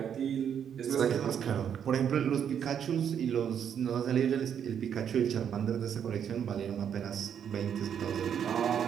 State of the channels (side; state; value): left; quieter; 8.4 dB